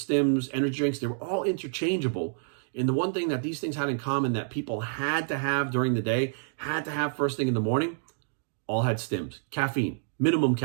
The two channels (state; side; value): silent; left; digital silence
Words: energy drinks. They were all interchangeable. And the one thing that these things had in common that people had to have during the day, had to have first thing in the morning, all had stims. Caffeine, minimum